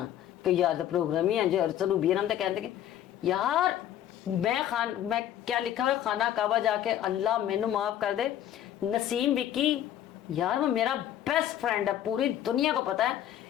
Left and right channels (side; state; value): right; quieter; 11.3 dB